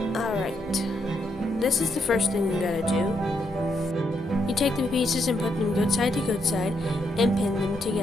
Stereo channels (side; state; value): both; normal; correlation 0.78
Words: Alright, this is the first thing you gotta do. You take the pieces and put them good side to good side and pin them